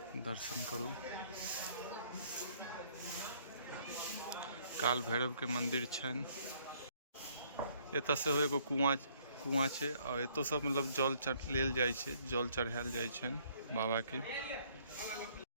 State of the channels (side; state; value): both; inverted; correlation -0.63